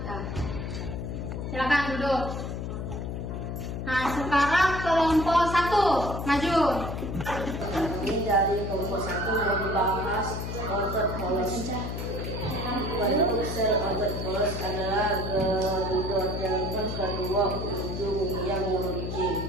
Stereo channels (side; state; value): left; noise; hum, 4 dB below the sound